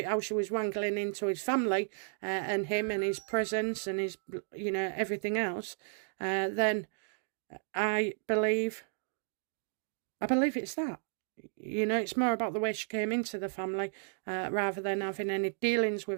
how she was wrangling into his family and him and his presence and his, you know, everything else, then I believe it's that. You know, it's more about the way she came into the family rather than having any dealings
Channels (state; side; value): silent; left; digital silence